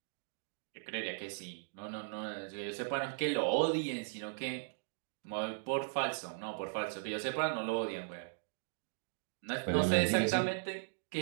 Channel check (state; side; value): silent; left; digital silence